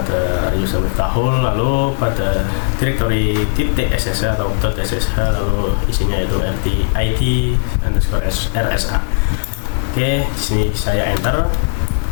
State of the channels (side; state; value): right; silent; 56 dB below the other